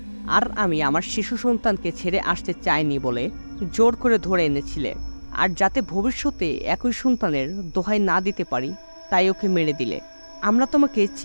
আর আমি আমার শিশু সন্তানকে ছেড়ে আসতে চাইনি বলে জোর করে ধরে এনেছিলে। আর যাতে ভবিষ্যতে একই সন্তানের দোহাই না দিতে পারি, তাই ওকে মেরে দিলে। আমরা তোমাকে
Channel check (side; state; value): both; inverted; correlation -1.00